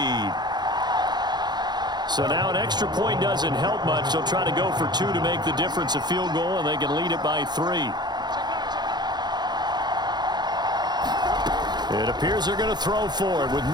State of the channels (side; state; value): left; late; 0.21 ms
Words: So now an extra point doesn't help much. They'll try to go for 2 to make the difference a field goal, and they can lead it by 3. It appears they're going to throw for it with